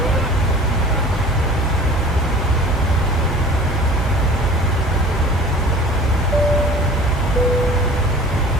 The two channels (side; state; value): both; normal; correlation 0.44